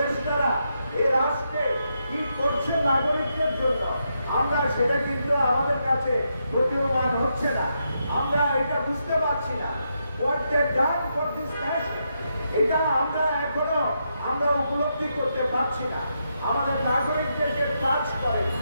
এই রাষ্ট্রে কি করছে নাগরিকদের জন্য, আমরা সেটা কিন্তু আমাদের কাছে প্রতীয়মান হচ্ছে না। আমরা এটা বুঝতে পারছি না। What they done for this nation, এটা আমরা এখনো উপলব্ধি করতে পারছি না। আমাদের নাগরিকদের যে কাজ করে,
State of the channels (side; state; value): both; inverted; correlation -0.82